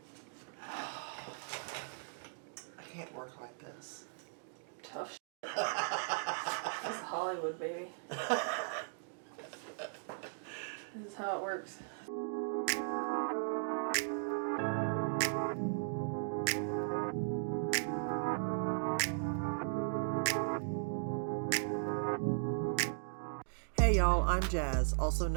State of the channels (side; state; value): left; silent; digital silence